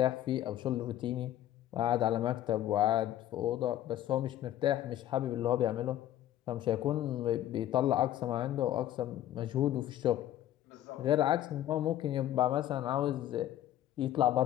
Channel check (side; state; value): right; quieter; 12.5 dB